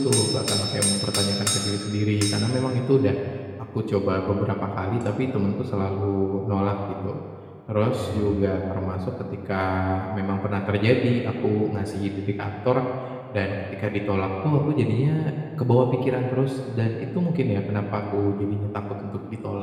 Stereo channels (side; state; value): both; identical; correlation 1.00